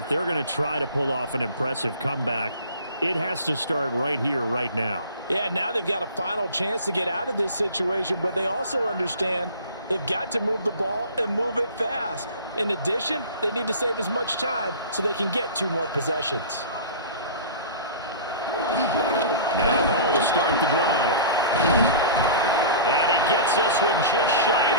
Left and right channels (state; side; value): inverted; both; correlation -0.38